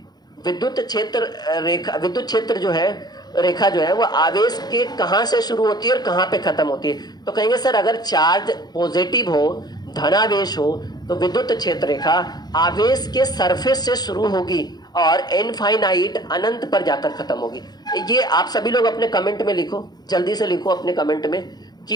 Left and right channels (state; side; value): late; right; 0.20 ms